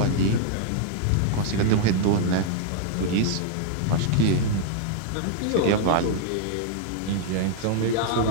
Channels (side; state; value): both; different; correlation 0.00